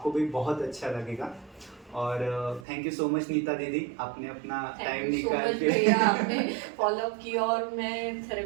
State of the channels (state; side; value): drops out; left; at 2.7 s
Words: भी बहुत अच्छा लगेगा। और thank you so much Neeta दीदी, आपने अपना टाइम थैंक यू सो निकाल मच के भैया, आपने फॉलो अप किया और मैं